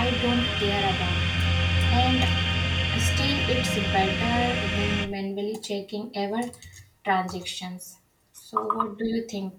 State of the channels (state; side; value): identical; both; correlation 1.00